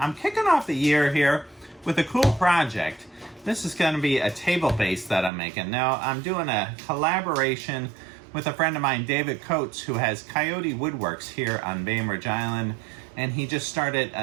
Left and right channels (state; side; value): drops out; left; at 5.3 s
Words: kicking off the year here with a cool project. This is going to be a table base that I'm making. Now, I'm doing a collaboration with a friend of mine, David Coates, who has Coyote Woodworks here on Bainbridge Island, and he just started